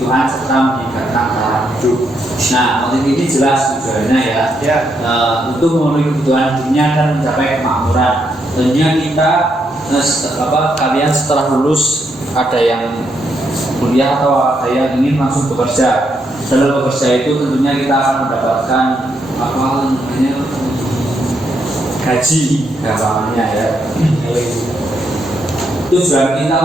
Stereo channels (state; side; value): normal; both; correlation 0.78